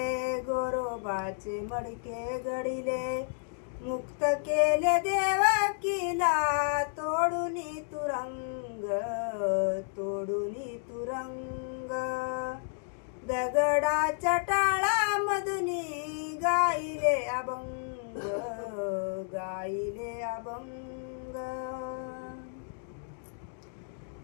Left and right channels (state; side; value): silent; right; digital silence